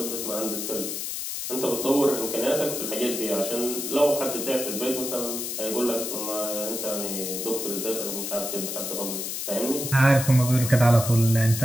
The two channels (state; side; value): noise; left; hiss, 4 dB below the sound